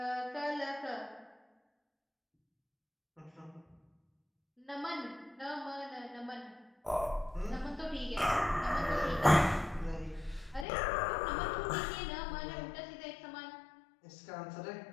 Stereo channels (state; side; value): drops out; right; at 10.7 s